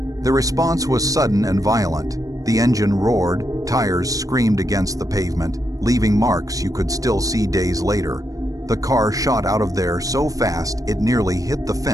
The response was sudden and violent. The engine roared, tires screamed against the pavement, leaving marks you could still see days later. The car shot out of there so fast it nearly hit the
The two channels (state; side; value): late; left; 0.17 ms